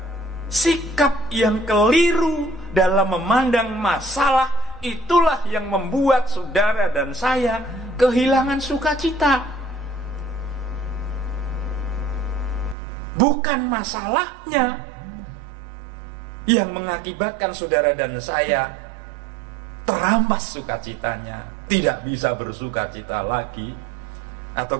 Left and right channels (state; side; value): drops out; left; at 12.8 s